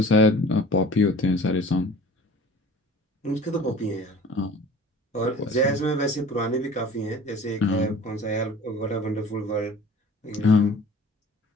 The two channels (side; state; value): both; normal; correlation 0.44